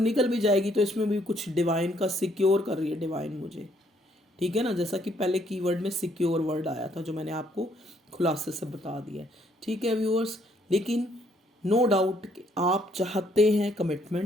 भी जाएगी तो इसमें भी कुछ डिवाइन का सिक्योर कर रही है डिवाइन मुझे। ठीक है ना, जैसा कि पहले कीवर्ड में सिक्योर वर्ड आया था जो मैंने आपको खुलासे से बता दिया है। ठीक है व्यूअर्स, लेकिन नो डाउट कि आप चाहते हैं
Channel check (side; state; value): both; normal; correlation 0.68